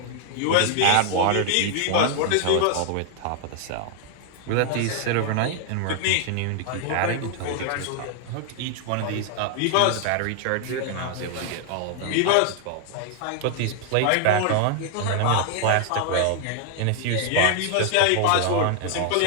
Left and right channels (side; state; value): both; different; correlation 0.00